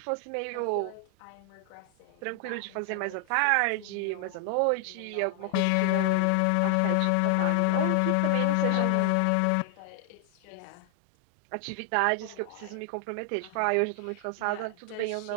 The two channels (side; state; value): both; different; correlation 0.00